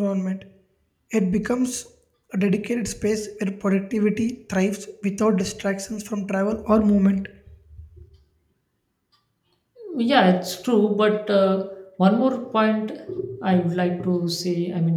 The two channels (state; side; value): identical; both; correlation 1.00